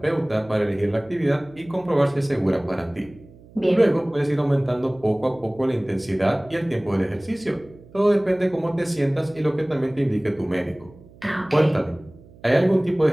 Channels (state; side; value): noise; right; hum, 23 dB below the sound